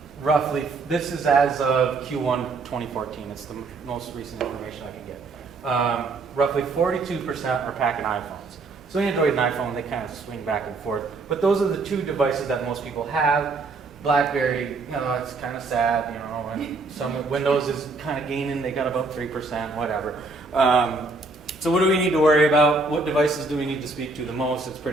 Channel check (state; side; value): quieter; left; 3.7 dB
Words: Roughly, this is as of Q1 2014. It's the most recent information I can get. Roughly 42% are packing iPhones. So Android and iPhone, they kind of swing back and forth. But those are the two devices that most people have. BlackBerry, it's kind of sad, and some Windows is kind of gaining. They got about 3%, whatever. So what do we need to worry about? What devices do we need to speak to the most? It's